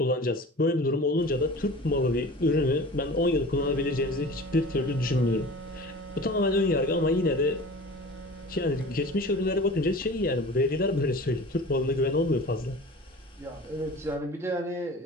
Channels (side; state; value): both; normal; correlation 0.39